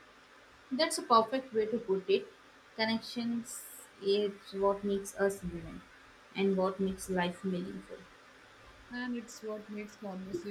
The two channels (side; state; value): both; identical; correlation 1.00